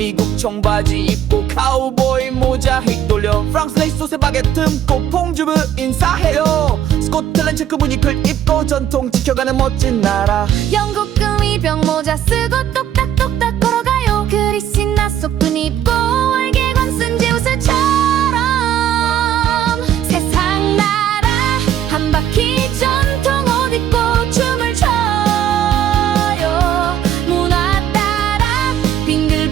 청바지 입고 카우보이 모자 휙돌려. 프랑스 레이스 옷에 바게트 듬고 퐁주브 인사해요. 스코틀랜드 체크 무늬클 입고 전통 지켜가는 멋진 나라. 영국 금이병 모자 쓰고 똑딱똑딱 걸어가요. 그리스 나속분 입고 월계관 쓴 제 옷을처럼 세상 나라 한 바퀴 전통 옷 입고 춤을 춰요. 문화 따라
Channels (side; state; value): left; quieter; 10.4 dB